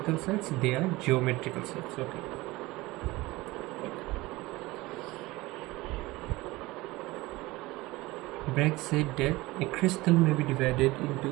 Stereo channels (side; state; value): left; quieter; 20.4 dB